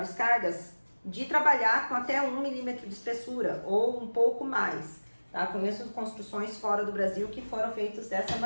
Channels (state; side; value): inverted; both; correlation -1.00